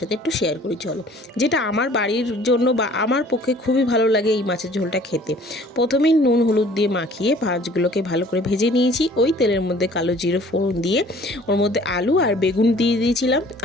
একটু শেয়ার করি চলো। যেটা আমার বাড়ির জন্য বা আমার পক্ষে খুবই ভালো লাগে এই মাছের ঝোলটা খেতে। প্রথমেই নুন হলুদ দিয়ে মাখিয়ে মাছগুলোকে ভালো করে ভেজে নিয়েছি। ওই তেলের মধ্যে কালো জিরে ফোড়ন দিয়ে ওর মধ্যে আলু আর বেগুন দিয়ে দিয়েছিলাম।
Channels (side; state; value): both; normal; correlation 0.52